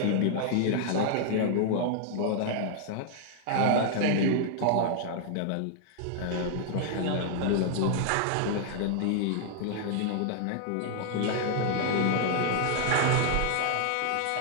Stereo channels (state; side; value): different; both; correlation -0.01